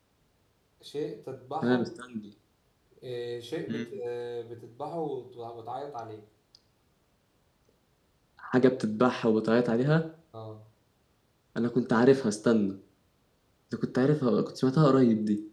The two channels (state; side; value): identical; both; correlation 1.00